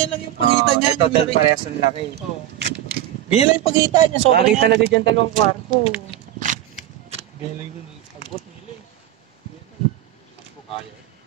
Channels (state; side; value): quieter; left; 12.7 dB